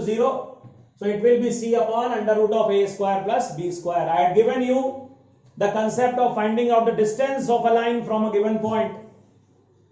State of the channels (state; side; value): identical; both; correlation 1.00